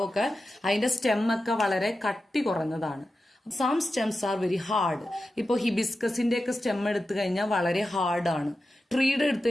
അതിന്റെ സ്റ്റെമ്മൊക്കെ വളരെ കട്ടി കുറഞ്ഞതാണ്. Some stems are very hard. ഇപ്പോൾ ഹിബിസ്കസിന്റെ ഒക്കെ സ്റ്റെം എടുത്തു കഴിഞ്ഞാൽ വളരെ ഹാർഡാണ്. ട്രീയുടെ എടുത്തു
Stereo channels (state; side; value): normal; both; correlation 0.92